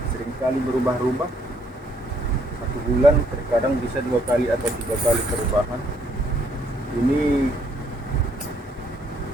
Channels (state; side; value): normal; both; correlation 0.68